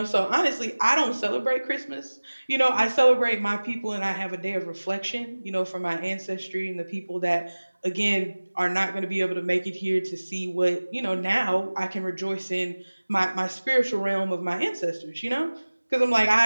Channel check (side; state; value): both; inverted; correlation -1.00